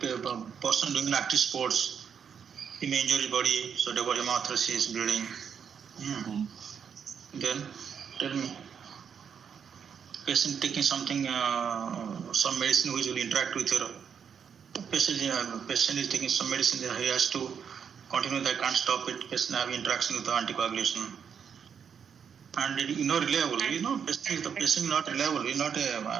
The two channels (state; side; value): quieter; left; 7.3 dB